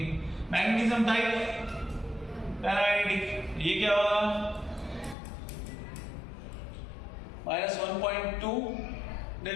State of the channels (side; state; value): right; drops out; at 5.2 s